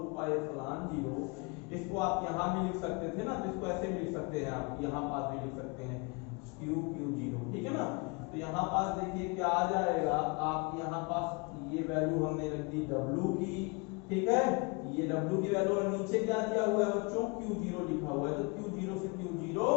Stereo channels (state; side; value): quieter; right; 30.8 dB